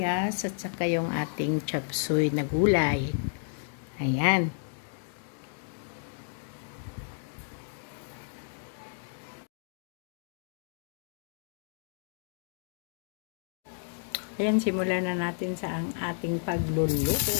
at saka yung ating chop suey na gulay. Ayan. Ayan, simulan na natin sa ang ating pagluluto.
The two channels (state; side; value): silent; right; digital silence